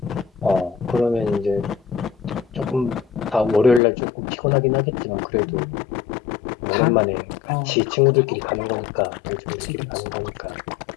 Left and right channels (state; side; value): drops out; right; at 3.8 s